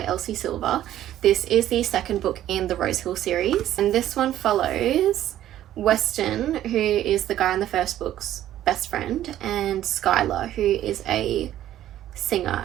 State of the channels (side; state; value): left; quieter; 12.5 dB